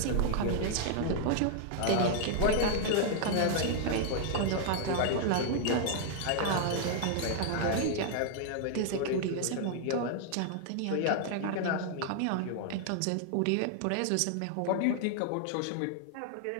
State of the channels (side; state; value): both; different; correlation 0.00